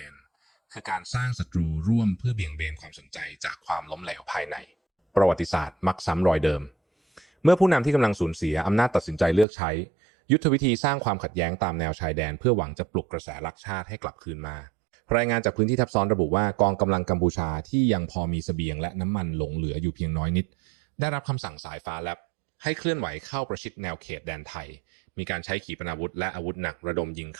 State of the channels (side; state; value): left; drops out; at 9.5 s